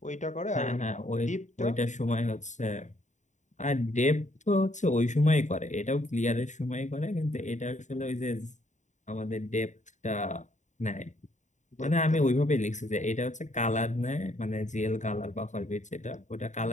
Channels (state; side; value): late; right; 0.35 ms